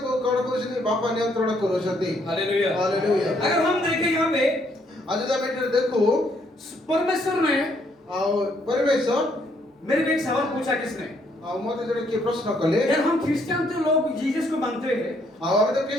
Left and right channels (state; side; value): normal; both; correlation 0.70